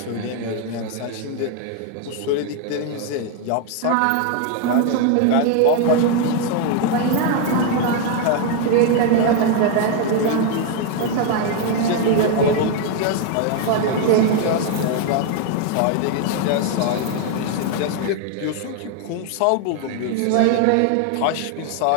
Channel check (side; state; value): both; different; correlation 0.01